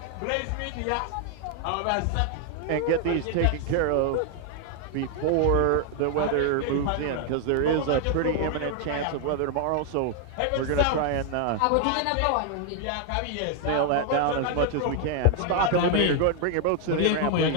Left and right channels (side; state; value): both; different; correlation 0.00